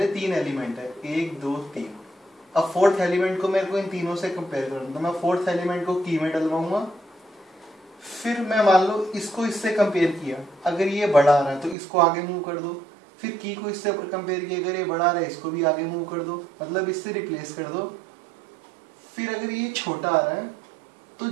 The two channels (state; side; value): drops out; left; at 11.8 s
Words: 3 एलिमेंट है, 1 2 3। अब फोर्थ एलिमेंट को मेरे को इन तीनों से कंपेयर करना, तो मैं फोर्थ एलिमेंट को की में डलवाऊंगा। फिर मैं मान लो इसको इससे कंपेयर किया, अगर ये बड़ा आ रहा है तो इसको आगे मूव कर दो। फिर की को इससे कंपेयर किया, अगर ये बड़ा आ रहा है इसको भी आगे मूव कर दो, मतलब इससे रिप्लेस कर दो। फिर अगर ये छोटा आ रहा है तो